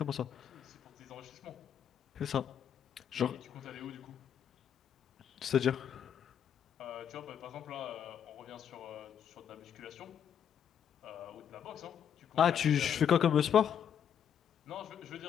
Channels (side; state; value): right; quieter; 8.6 dB